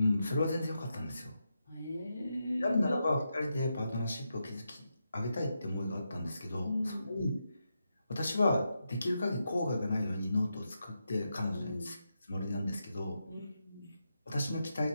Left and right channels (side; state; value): both; inverted; correlation -0.86